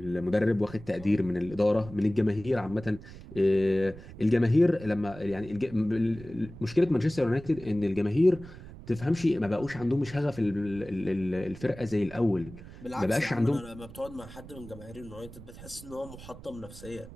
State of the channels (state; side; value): noise; right; rumble, 16 dB below the sound